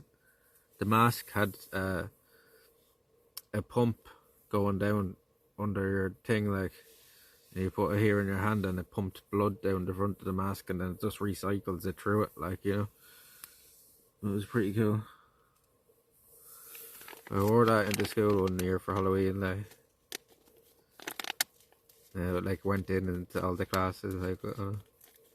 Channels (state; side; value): identical; both; correlation 1.00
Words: the mask had a pump going down under your thing, like, and you put it here in your hand, and it pumped blood down the front of the mask, and then it just recycles it through it, like, you know. It was pretty cool. I wore that into school one year for Halloween, like. Like went in into all the classes, like,